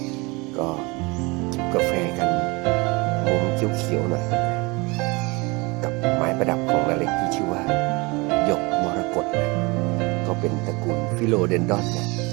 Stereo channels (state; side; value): quieter; left; 26.2 dB